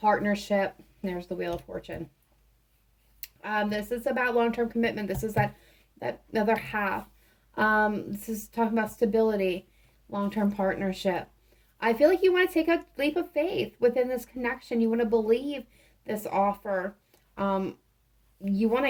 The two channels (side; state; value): both; identical; correlation 1.00